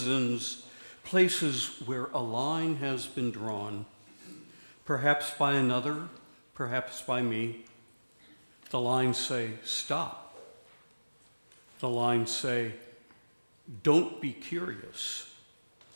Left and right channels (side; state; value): both; inverted; correlation -1.00